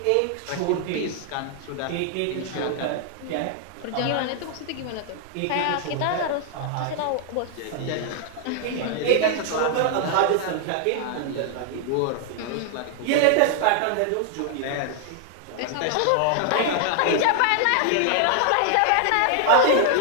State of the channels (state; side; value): different; both; correlation 0.00